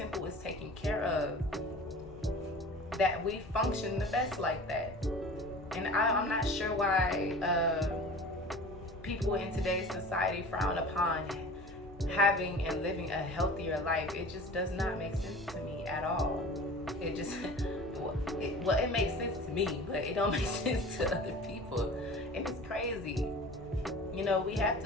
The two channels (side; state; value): both; normal; correlation 0.39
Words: is taken care of. That we function the best like that. And I'm not sure why people in today's society frown upon having and living a healthier life. It just does not make sense to me at all. It just, it makes sense to me, but it don't make sense to other people. And it's crazy. You know, we have